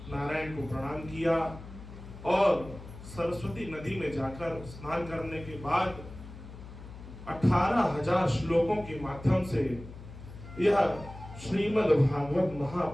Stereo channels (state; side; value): noise; left; hum, 14 dB below the sound